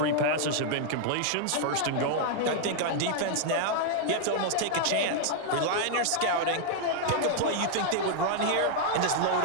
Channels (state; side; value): different; both; correlation 0.00